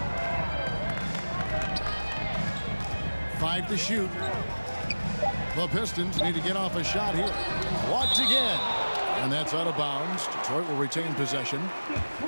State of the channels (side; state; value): both; inverted; correlation -1.00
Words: Five to shoot. The Pistons need to get off a shot here. Blocked again. And that's out of bounds. Detroit will retain possession.